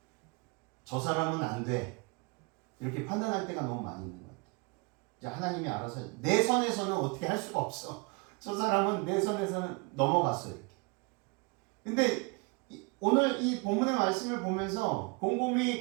저 사람은 안 돼. 이렇게 판단할 때가 너무 많이 있는 것 같아요. 이제 하나님이 알아서 내 선에서는 어떻게 할 수가 없어. 저 사람은 내 선에서는 넘어갔어요. 이렇게. 근데 오늘 이 본문의 말씀을 보면서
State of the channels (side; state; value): left; quieter; 29.7 dB